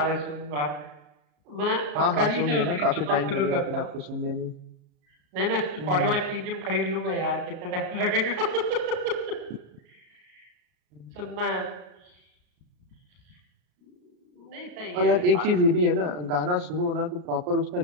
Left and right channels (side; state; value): left; late; 34 ms